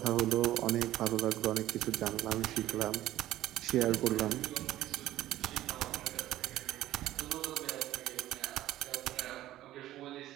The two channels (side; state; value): left; quieter; 14.3 dB